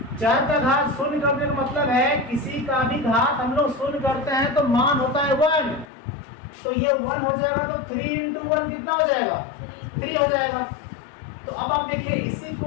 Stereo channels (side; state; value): right; drops out; at 5.9 s